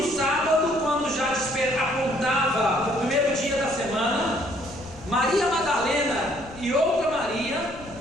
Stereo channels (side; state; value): left; noise; rumble, 18 dB below the sound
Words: sábado, quando já apontava o primeiro dia da semana, Maria Madalena e outra Maria